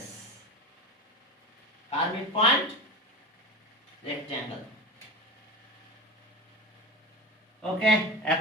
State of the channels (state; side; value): normal; both; correlation 0.28